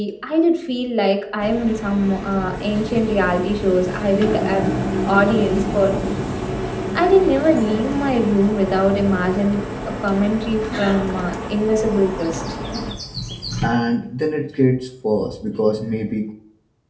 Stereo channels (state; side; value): identical; both; correlation 1.00